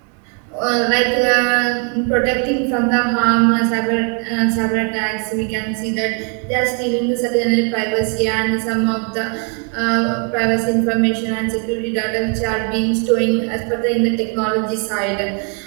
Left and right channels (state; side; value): quieter; left; 39.0 dB